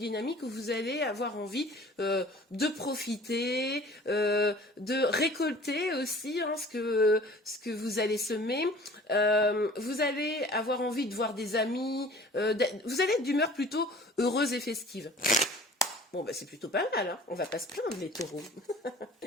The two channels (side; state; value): both; normal; correlation 0.47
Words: où vous allez avoir envie de profiter, de récolter aussi, hein, ce que vous allez semer. Vous allez avoir envie de voir des amis. Vous allez être d'humeur plutôt heureuse et festive. Bon, bah, c'est plutôt pas mal, hein. On va pas se plaindre, les taureaux.